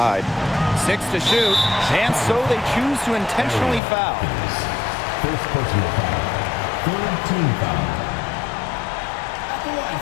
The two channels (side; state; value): right; drops out; at 3.8 s